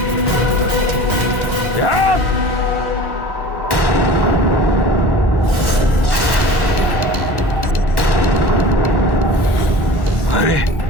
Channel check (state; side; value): late; right; 1.1 ms